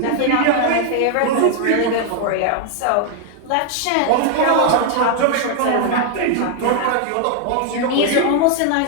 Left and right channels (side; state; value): both; different; correlation 0.00